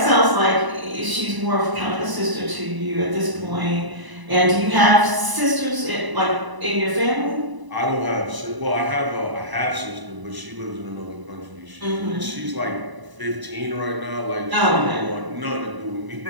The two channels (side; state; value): left; late; 1.0 ms